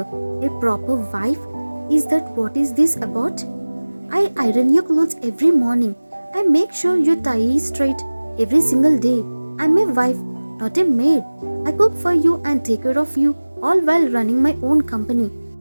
A proper wife? Is that what is this about? I iron your clothes every morning. I make sure your tie is straight every single day. I'm a wife, not a maid. I cook for you and take care of you, all while running my own company.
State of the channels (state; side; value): inverted; both; correlation -1.00